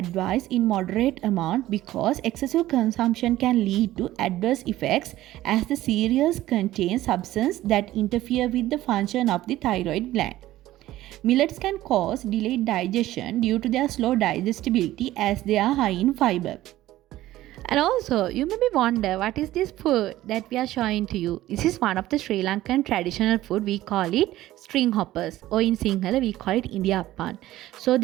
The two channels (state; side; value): quieter; left; 15.2 dB